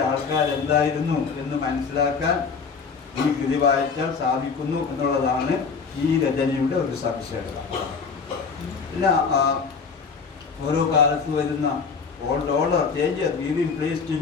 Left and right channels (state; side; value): quieter; right; 5.4 dB